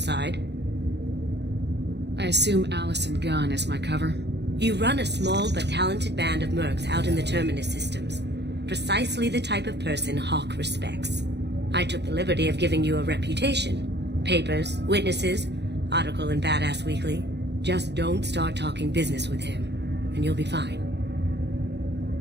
I assume Allison Gunn is my cover? You run a small but talented band of mercs out in the Terminus systems. Precisely the type of person Hawk respects. I took the liberty of giving you a reputation. Papers, witnesses, article in Badass Weekly. Just don't start talking business with him, and you'll be fine.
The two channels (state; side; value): late; left; 0.50 ms